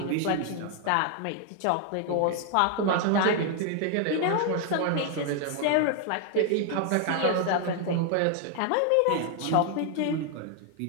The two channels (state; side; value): different; both; correlation 0.00